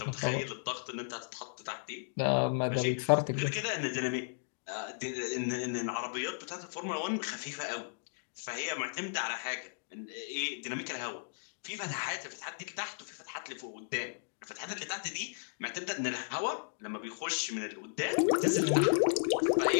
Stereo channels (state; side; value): silent; right; digital silence